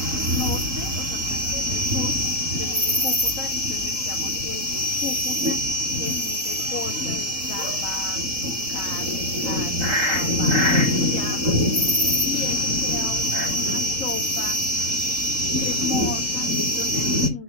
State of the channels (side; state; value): left; late; 3.8 ms